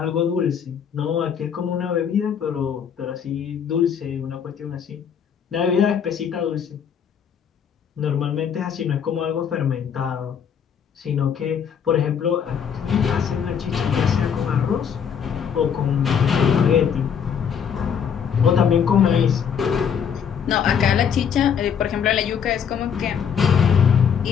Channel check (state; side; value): quieter; right; 7.6 dB